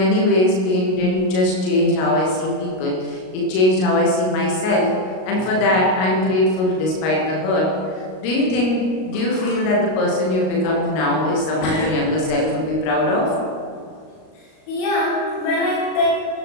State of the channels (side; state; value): right; late; 38 ms